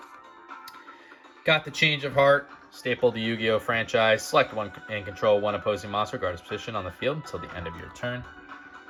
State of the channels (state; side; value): identical; both; correlation 1.00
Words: Got the Change of Heart. Staple the Yu-Gi-Oh! Franchise. Select 1 and control 1 opposing monster, regardless of position on the field until the end of your turn.